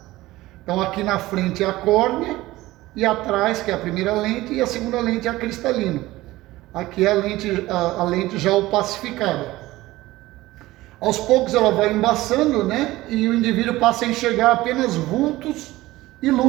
Então aqui na frente é a córnea e atrás, que é a primeira lente, e a segunda lente é a cristalino. Aqui é a lente já opacificada. Aos poucos ela vai embaçando, e o indivíduo passa a enxergar apenas vultos e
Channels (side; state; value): left; quieter; 17.8 dB